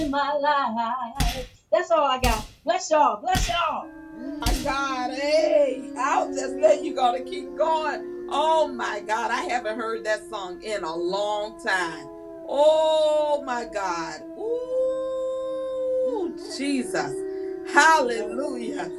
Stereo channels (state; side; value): identical; both; correlation 1.00